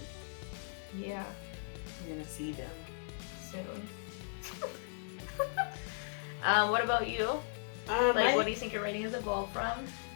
Yeah. You're gonna see them. Soon. What about you? What do you think your writing has evolved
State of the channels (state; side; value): silent; right; digital silence